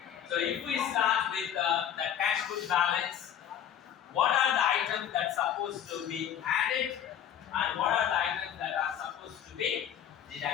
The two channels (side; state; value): right; quieter; 9.6 dB